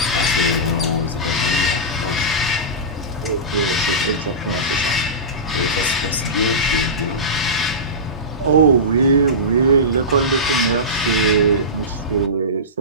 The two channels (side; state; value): both; normal; correlation -0.18